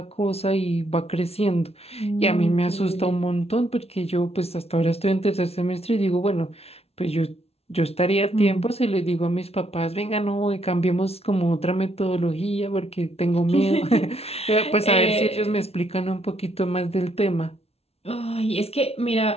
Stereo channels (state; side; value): late; right; 0.30 ms